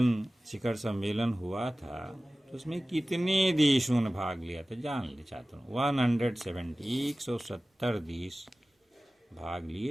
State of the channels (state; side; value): normal; both; correlation 0.97